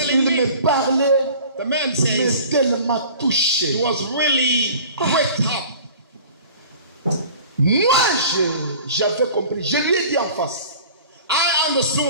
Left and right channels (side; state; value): both; inverted; correlation -0.44